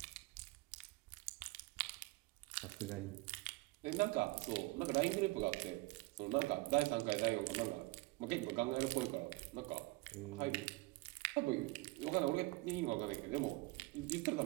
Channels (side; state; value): left; quieter; 23.4 dB